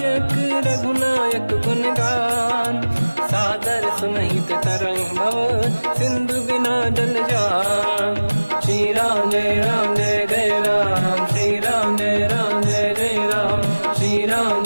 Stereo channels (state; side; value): inverted; both; correlation -1.00